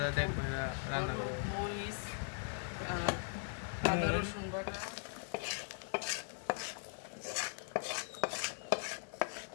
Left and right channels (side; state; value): right; silent; digital silence